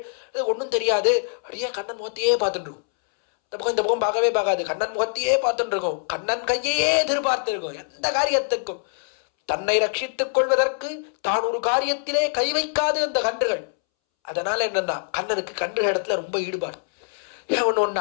இது ஒன்றும் தெரியாது, அப்படியே கண்ணன் முகத்தையே பார்த்துட்டு இருக்கும். இந்த பக்கம் பார்க்கவே பார்க்காது, கண்ணன் முகத்தையே பார்த்துட்டு இருக்கும், கண்ணன் கையே எதிர்பார்த்து இருக்கும். எந்த காரியத்துக்கும் தன்னை ரட்சித்துக் கொள்வதற்கு தான் ஒரு காரியத்திலே கை வைக்காது அந்த கன்றுகள். அதனால என்னன்னா கண்ணனுக்கு கன்றுகள் இடத்துல ரொம்ப ஈடுபாடு.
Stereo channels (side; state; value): right; silent; 63 dB below the other